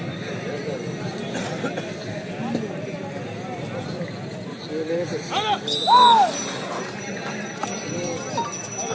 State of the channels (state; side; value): identical; both; correlation 1.00